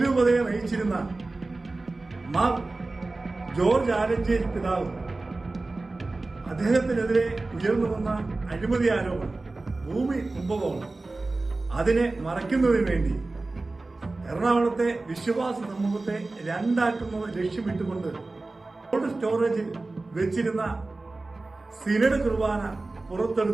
നയിച്ചിരുന്ന മാർ ജോർജ് ആലഞ്ചേരി പിതാവ് അദ്ദേഹത്തിനെതിരെ ഉയർന്നു വന്ന അഴിമതി ആരോപണം, ഭൂമി കുംഭകോണം, അതിനെ മറയ്ക്കുന്നതിന് വേണ്ടി എറണാകുളത്തെ വിശ്വാസ സമൂഹത്തെ രണ്ടാക്കുന്നത് ലക്ഷ്യമിട്ടുകൊണ്ട് കോൾഡ് സ്റ്റോറേജിൽ വെച്ചിരുന്ന സിനഡ് കുർബാന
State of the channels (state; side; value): quieter; left; 3.3 dB